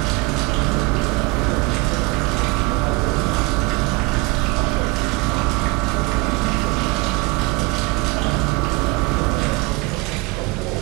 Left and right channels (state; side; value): quieter; left; 24.2 dB